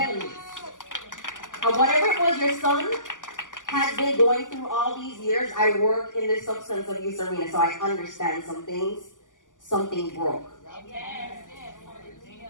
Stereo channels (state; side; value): late; right; 0.88 ms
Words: And whatever it was your son has been going through all these years, I work in the substance abuse arena, so I understand some things. Something broke.